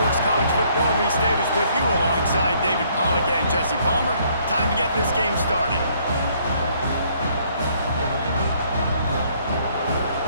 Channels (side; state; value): both; inverted; correlation -0.65